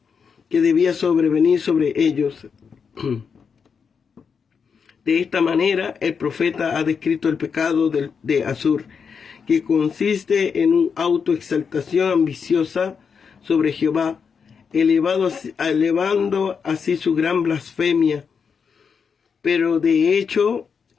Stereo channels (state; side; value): quieter; right; 6.2 dB